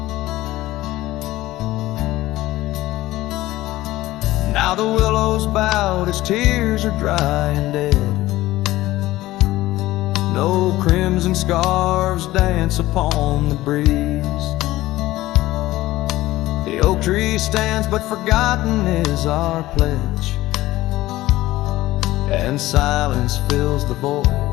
Now the willows bowed as tears are dry and dead. No crimson scarves dance upon the breeze. The oak tree stands, but forgotten is our pledge, and silence fills the void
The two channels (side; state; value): right; quieter; 16.9 dB